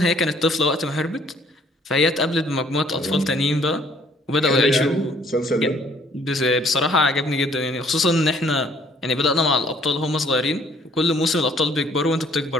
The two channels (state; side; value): normal; both; correlation 0.61